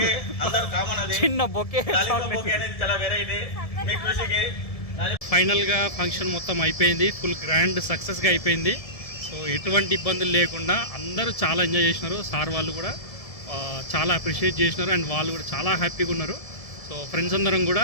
చిన్న బొకే. ఫైనల్గా ఫంక్షన్ మొత్తం అయిపోయింది, ఫుల్ గ్రాండ్ సక్సెస్గా అయిపోయింది. సో ఎటువంటి ఇబ్బందులు లేకుండా అందరూ చాలా ఎంజాయ్ చేసినారు. సార్ వాళ్ళు కూడా చాలా అప్రిషియేట్ చేసినారు అండ్ వాళ్ళు కూడా చాలా హ్యాపీగా ఉన్నారు. సో ఫ్రెండ్స్ అందరం కూడా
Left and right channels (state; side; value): late; right; 1.7 ms